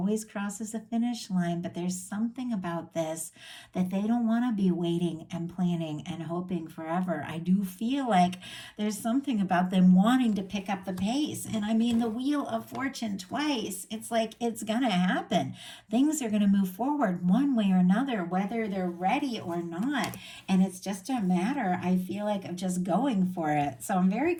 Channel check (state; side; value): identical; both; correlation 1.00